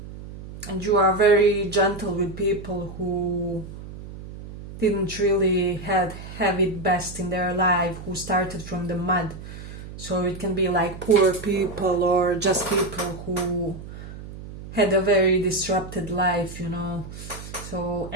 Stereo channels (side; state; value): right; noise; hum, 13 dB below the sound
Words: And you are very gentle with people who didn't really have it best in their life, who started from the mud. So it can be like poor people or just people who had a very disrupted life, you know. So,